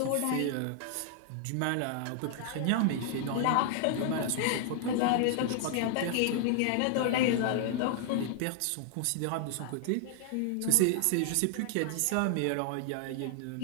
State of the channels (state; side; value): different; both; correlation 0.00